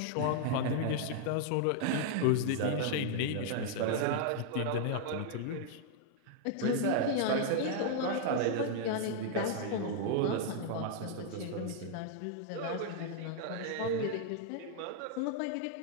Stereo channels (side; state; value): both; different; correlation -0.01